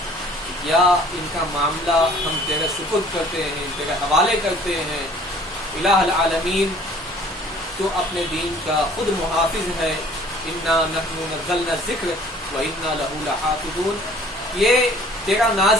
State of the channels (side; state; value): both; normal; correlation 0.53